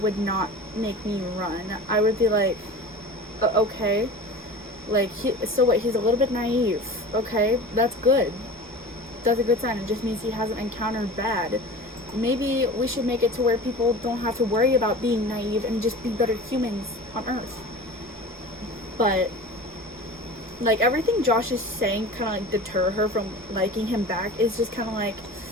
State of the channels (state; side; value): normal; both; correlation 0.36